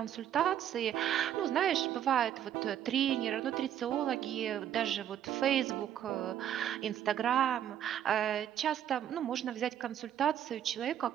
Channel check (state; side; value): quieter; left; 10.4 dB